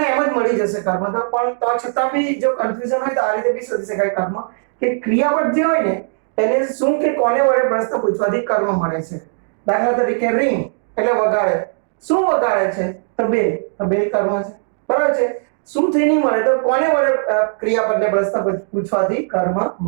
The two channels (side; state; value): left; silent; 67 dB below the other